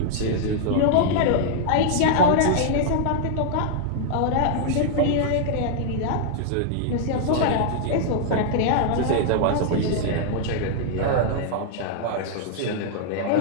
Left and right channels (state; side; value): different; both; correlation -0.01